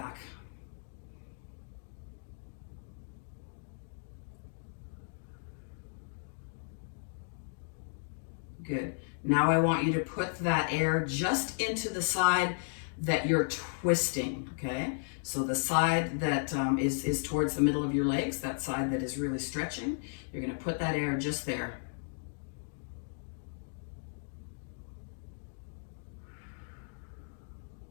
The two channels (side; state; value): right; silent; digital silence